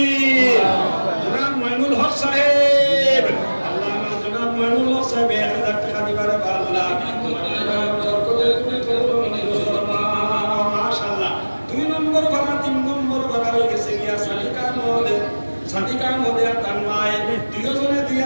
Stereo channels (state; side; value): inverted; both; correlation -1.00